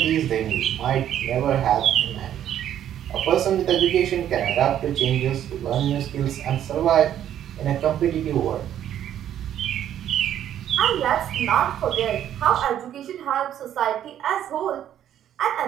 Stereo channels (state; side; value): quieter; left; 10.8 dB